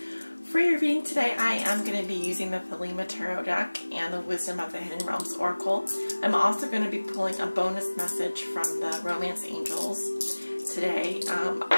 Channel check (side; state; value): both; inverted; correlation -1.00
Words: For your reading today, I am going to be using the Thelema Tarot deck and the Wisdom of the Hidden Realms Oracle. I'm also going to be pulling a bonus message from the Romance Angels today.